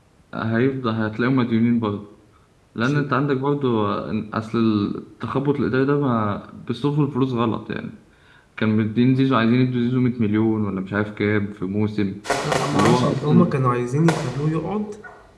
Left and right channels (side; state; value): both; identical; correlation 1.00